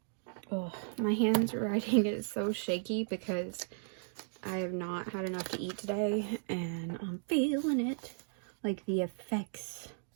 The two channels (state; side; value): silent; left; digital silence